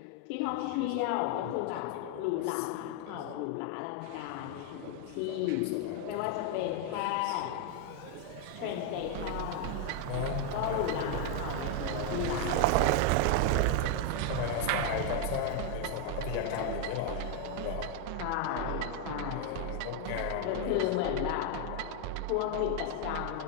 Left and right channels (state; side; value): different; both; correlation 0.00